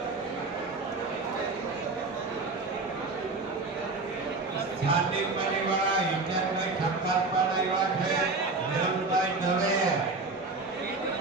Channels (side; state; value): left; quieter; 3.6 dB